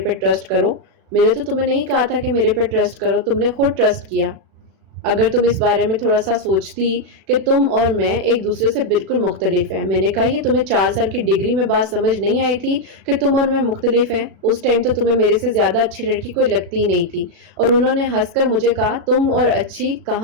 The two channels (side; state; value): left; late; 36 ms